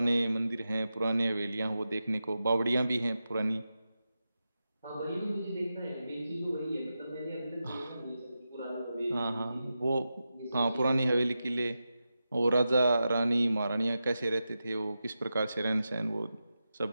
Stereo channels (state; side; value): inverted; both; correlation -0.91